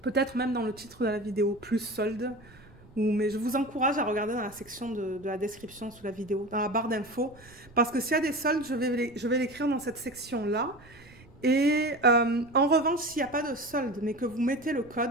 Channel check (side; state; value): right; noise; rumble, 24 dB below the sound